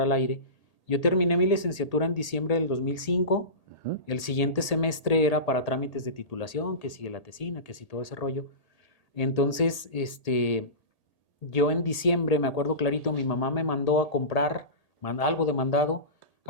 aire, yo terminé mi licenciatura en diciembre del 2005. Ujú. El siguiente semestre era para trámites de titulación, que sigue la tesina, que sí todo ese rollo. Entonces, yo en diciembre, me acuerdo clarito, mi mamá me mandó a comprar algo de mandado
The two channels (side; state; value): right; late; 1.8 ms